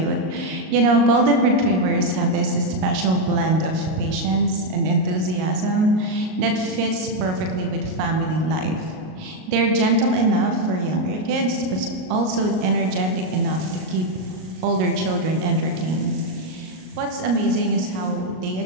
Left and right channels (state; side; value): late; left; 38 ms